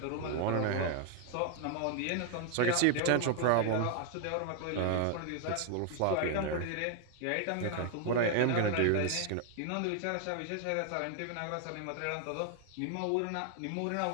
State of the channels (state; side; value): different; both; correlation 0.00